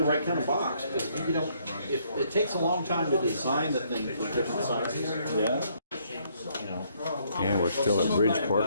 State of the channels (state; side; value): inverted; both; correlation -0.68